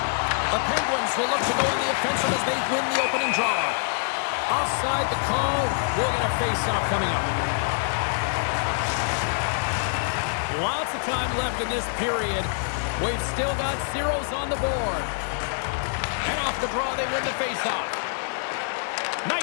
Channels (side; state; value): right; silent; digital silence